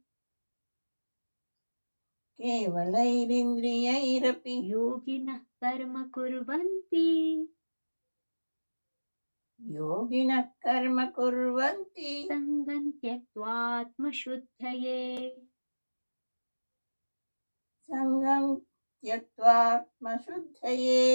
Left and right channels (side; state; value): both; inverted; correlation -1.00